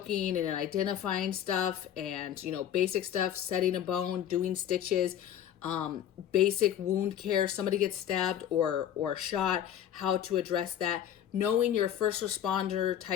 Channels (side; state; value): right; quieter; 10.2 dB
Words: and identifying stuff, and, you know, basic stuff, setting a bone, doing stitches, basic wound care, somebody gets stabbed or shot, how to address that. Knowing your first responder